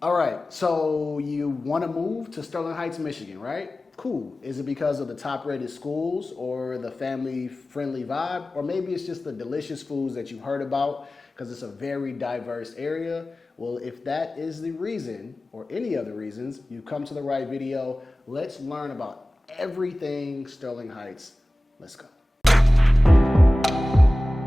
All right, so you want to move to Sterling Heights, Michigan, right? Cool. Is it because of the top-rated schools or the family-friendly vibe? Or maybe it's just the delicious foods that you've heard about because it's a very diverse area? Well, if that is the reason or any other reasons, you've come to the right video. Let's learn about everything Sterling Heights. Let's go.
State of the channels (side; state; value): both; normal; correlation 0.97